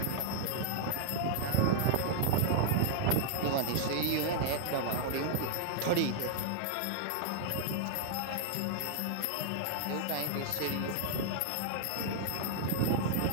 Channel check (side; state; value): both; different; correlation 0.00